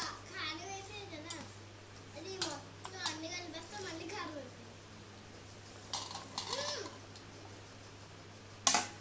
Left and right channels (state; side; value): identical; both; correlation 1.00